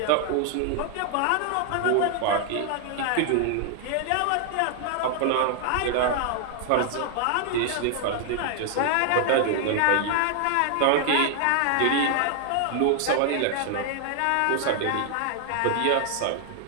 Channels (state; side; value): different; both; correlation 0.00